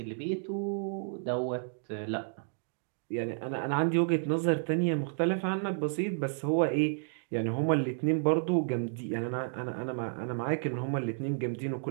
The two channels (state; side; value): silent; left; digital silence